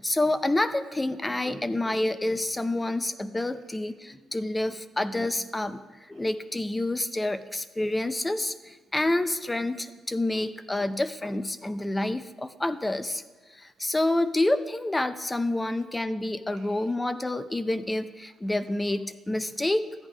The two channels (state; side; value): normal; both; correlation 0.97